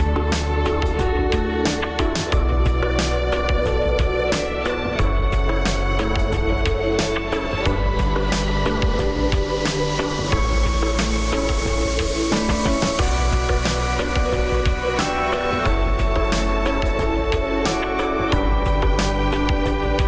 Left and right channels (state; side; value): identical; both; correlation 1.00